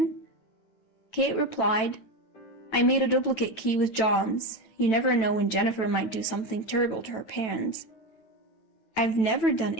Kate replied, "I made a duplicate key with John's. You never know when Jennifer might do something terrible to her parents." I've never done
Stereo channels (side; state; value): right; late; 9.1 ms